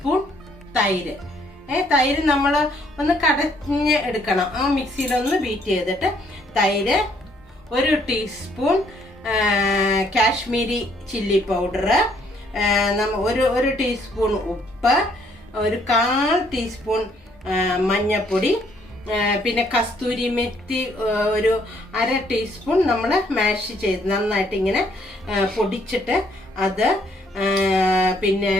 തൈര്. തൈര് നമ്മൾ ഒന്ന് കടഞ്ഞ് എടുക്കണം. മിക്സിയിലൊന്ന് ബീറ്റ് ചെയ്തിട്ട് തൈര്, 1 ടീസ്പൂൺ കാശ്മീരി ചില്ലി പൗഡർ, ഒരു ടീസ്പൂൺ ഉപ്പ്, 1/4 ടീസ്പൂൺ മഞ്ഞൾപ്പൊടി, പിന്നെ കസ്തൂരി മെത്തി 1/2 ടീസ്പൂൺ നമ്മൾ മാഷ് ചെയ്ത് നന്നായിട്ട് ഇങ്ങനെ പൊടിച്ചിട്ട് അത്, പിന്നെ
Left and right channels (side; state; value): both; normal; correlation 0.67